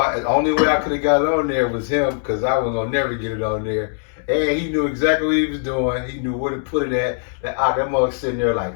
The only way I could have got it on there was him, because I was gonna never get it on there. And he knew exactly what he was doing. He knew where to put it at. That mother sitting there like,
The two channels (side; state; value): right; silent; 65 dB below the other